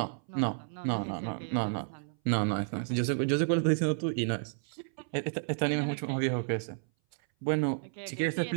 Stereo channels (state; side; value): silent; left; 57 dB below the other